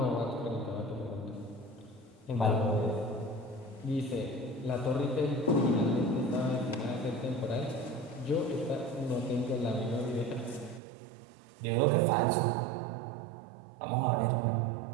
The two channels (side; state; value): left; drops out; at 10.8 s